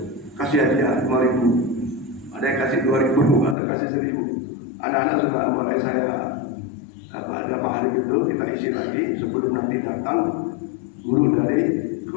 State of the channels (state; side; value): drops out; right; at 3.6 s